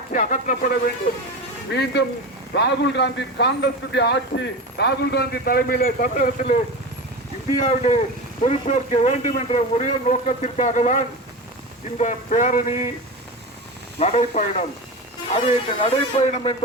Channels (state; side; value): normal; both; correlation 0.26